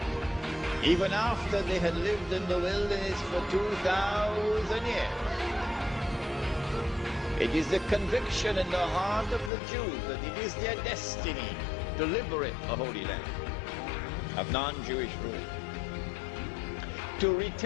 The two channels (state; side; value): drops out; right; at 9.5 s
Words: Even after they had lived in the wilderness for 2,000 years. It is the conviction in the heart of the Jews that it is their destiny to liberate the Holy Land of non-Jewish rule. To